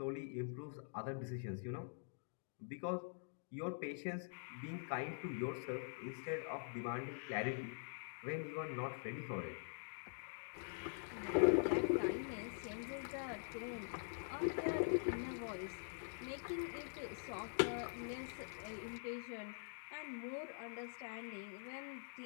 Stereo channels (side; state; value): right; silent; digital silence